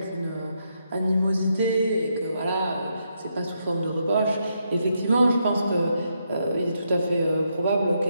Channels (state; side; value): inverted; both; correlation -0.79